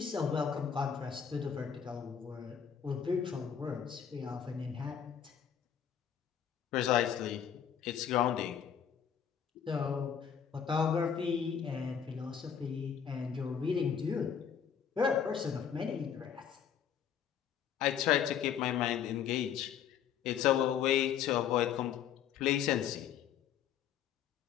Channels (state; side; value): quieter; right; 8.3 dB